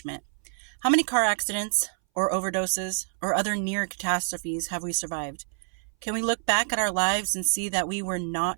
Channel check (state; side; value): silent; left; 60 dB below the other